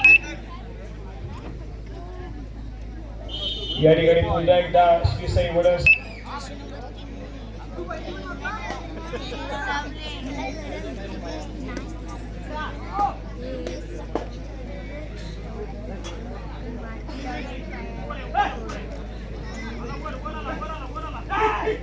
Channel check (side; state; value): both; identical; correlation 1.00